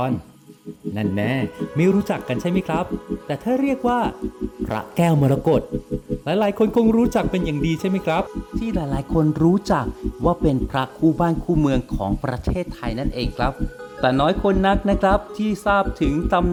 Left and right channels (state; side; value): identical; both; correlation 1.00